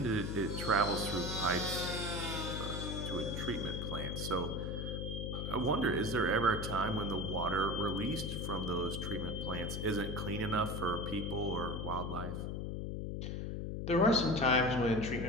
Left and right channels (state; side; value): noise; left; hum, 3 dB below the sound